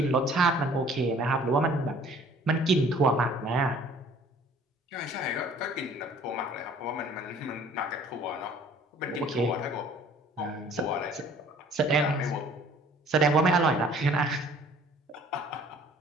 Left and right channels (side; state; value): both; normal; correlation 0.53